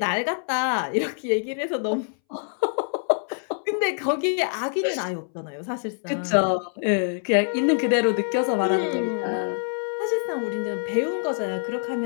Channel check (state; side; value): silent; right; 62 dB below the other